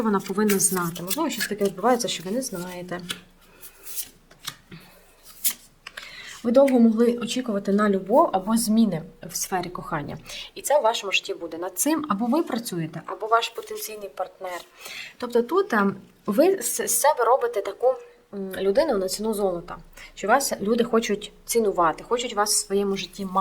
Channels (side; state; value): both; identical; correlation 1.00